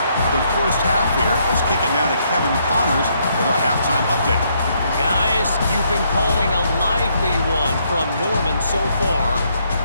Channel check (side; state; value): both; inverted; correlation -0.72